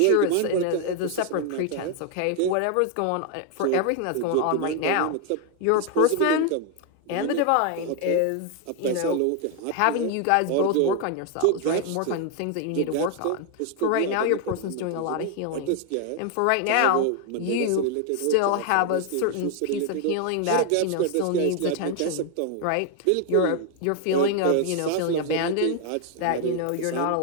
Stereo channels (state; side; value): different; both; correlation 0.00